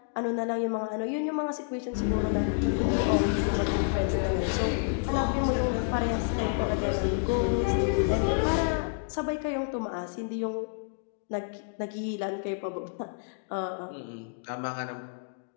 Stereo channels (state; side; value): silent; right; digital silence